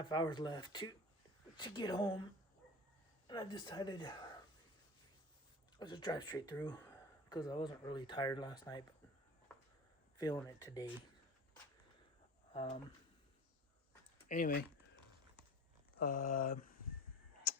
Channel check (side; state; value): both; normal; correlation 0.35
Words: hours left to get home. And I decided I'll just drive straight through because I wasn't really tired last night, but feeling it today. Anyway,